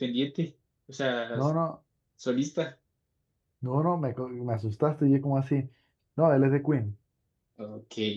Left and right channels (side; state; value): both; identical; correlation 1.00